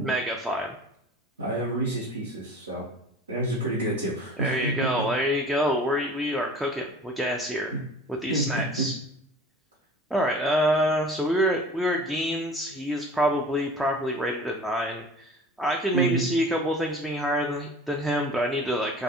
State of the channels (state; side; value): normal; both; correlation 0.42